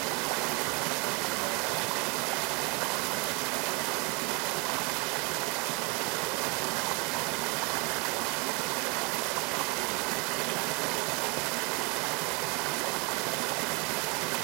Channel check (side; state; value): left; quieter; 30.5 dB